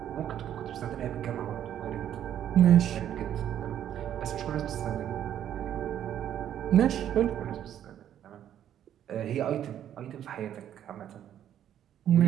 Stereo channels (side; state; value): left; quieter; 10.5 dB